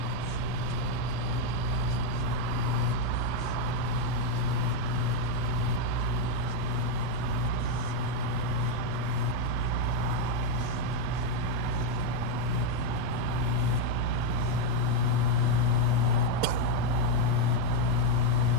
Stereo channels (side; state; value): both; different; correlation 0.02